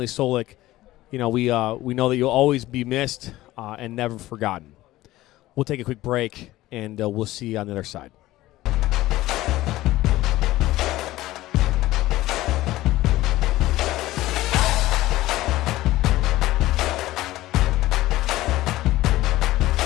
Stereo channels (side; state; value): right; quieter; 16.6 dB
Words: Solak, we know that you'll always be missed and never forgotten. We'll take a quick break, and we'll see you on the other side.